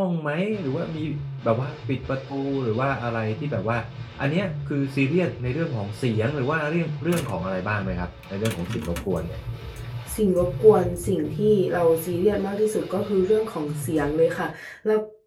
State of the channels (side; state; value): both; identical; correlation 1.00